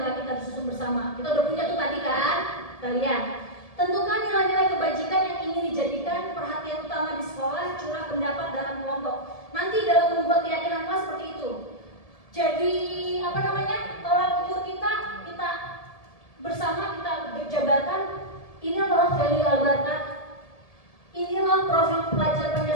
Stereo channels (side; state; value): right; late; 1.7 ms